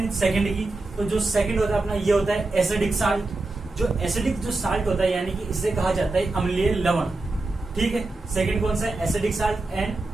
सेकंड की। तो जो सेकंड होता है अपना, ये होता है एसिडिक साल्ट। जो एसिडिक जो साल्ट होता है, यानी कि इसे कहा जाता है अम्लीय लवण। ठीक है, सेकंड कौन सा है, एसिडिक साल्ट, एंड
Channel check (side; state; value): left; quieter; 3.1 dB